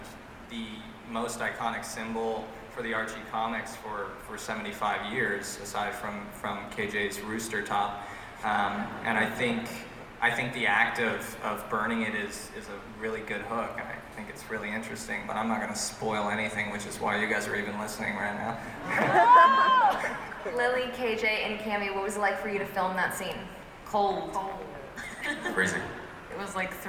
the most iconic symbol for the Archie comics for 75 years, aside from KJ's rooster top. And I think the act of burning it is a really good hook. And I think it's really interesting, but I'm not going to spoil anything, which is why you guys are even listening right now. Lily, KJ, and Cammy, what was it like for you to film that scene? Cold. Freezing. It was like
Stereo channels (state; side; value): identical; both; correlation 1.00